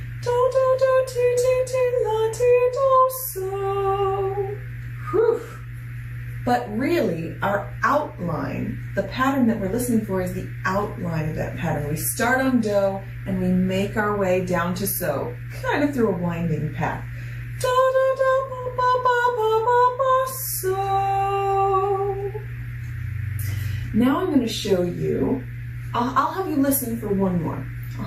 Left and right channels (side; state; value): both; identical; correlation 1.00